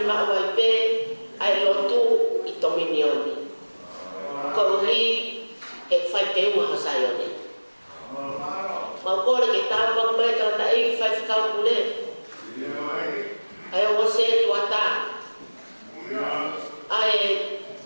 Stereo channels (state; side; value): inverted; both; correlation -1.00